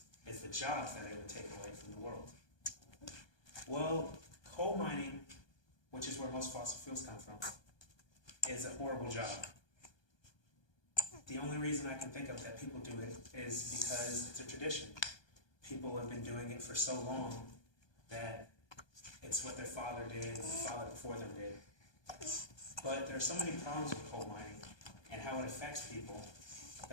is the jobs that it would take away from the world. Well, coal mining, which is where most fossil fuels come from, is a horrible job. The only reason I can think of that people do it is because it's a tradition. People have been doing it for so long that it's what their father did and the father before them did. But there are so many problems with coal mining and how it affects people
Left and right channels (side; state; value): right; late; 1.2 ms